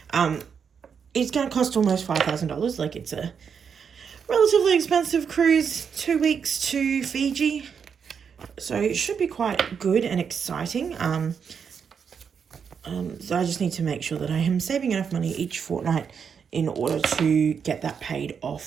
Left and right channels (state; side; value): quieter; left; 6.7 dB